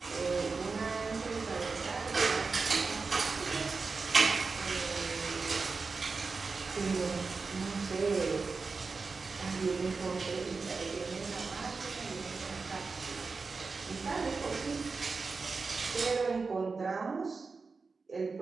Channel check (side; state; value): left; quieter; 4.4 dB